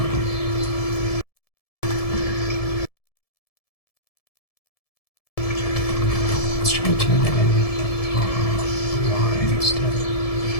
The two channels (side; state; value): right; late; 1.7 ms